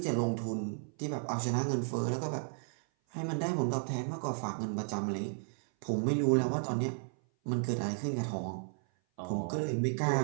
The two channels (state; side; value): silent; left; 55 dB below the other